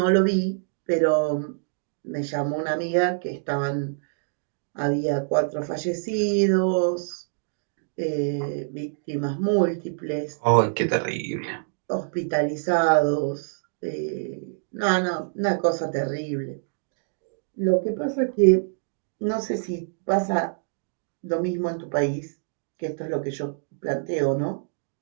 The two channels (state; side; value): silent; left; digital silence